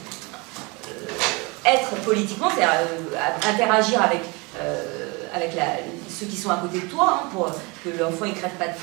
être politiquement, c'est-à-dire interagir avec ceux qui sont à côté de toi, hein, pour que l'enfant ne crève pas de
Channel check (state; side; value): quieter; left; 27.6 dB